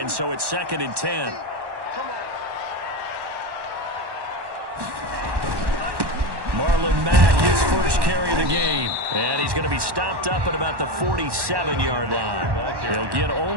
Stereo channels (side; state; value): left; late; 1.1 ms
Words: so it's 2nd and 10. Marlon Mack, his first carry of the game. And he's going to be stopped up at about the 47-yard line. He'll get